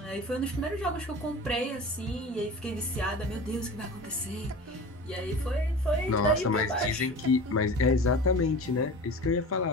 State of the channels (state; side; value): normal; both; correlation 0.36